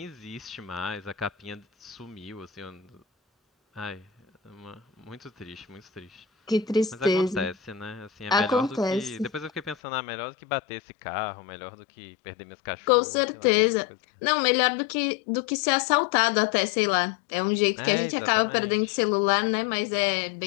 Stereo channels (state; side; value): drops out; right; at 9.8 s